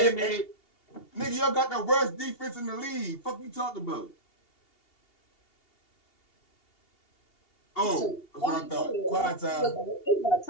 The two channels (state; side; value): late; right; 2.8 ms